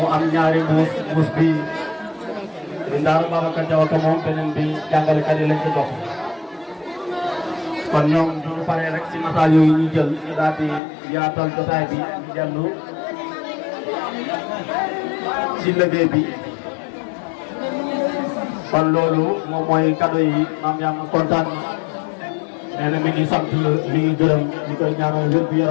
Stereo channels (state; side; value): drops out; right; at 10.8 s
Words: am ñaari mbuus bi di Ndaara Babacar Diaw ko moom beneen bi jàngalekat yi lañ ko jox kon ñoom du ñu paree rek ci nataal yooyu ñu jël ñu daal di yaatal jotaay bi ñu dellu ci liggéey bi kon loolu moom mooy cadeau yi Mame Yama kontaan nee na mi ngi sant mi ngi gërëm ñu koy ñaanal wér gu